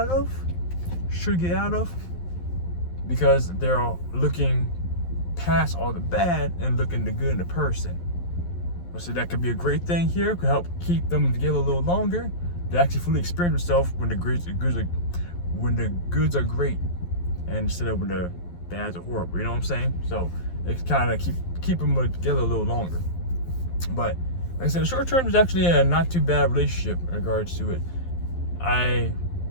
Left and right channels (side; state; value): right; late; 11 ms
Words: of, because they're looking past all the bad and looking the good in the person. So that could be a great thing here. Could help keep them together a little longer. They actually fully experience themselves when the goods when the goods are great, and instead of when the bads are horrible. You know what I'm saying? So it's kind of keep them together a little longer. But like I said, the short term is actually a not too bad relationship in regards to it. I